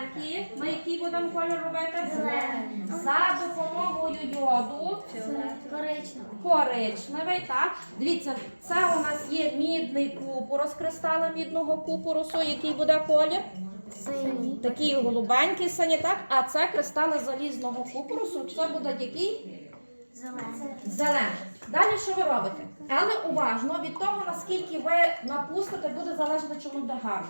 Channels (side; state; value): both; inverted; correlation -1.00